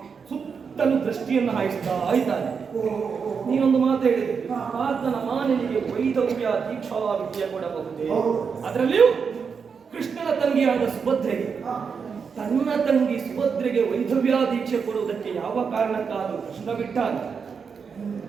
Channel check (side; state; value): left; quieter; 6.0 dB